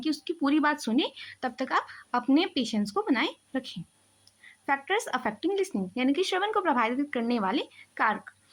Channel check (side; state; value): both; identical; correlation 1.00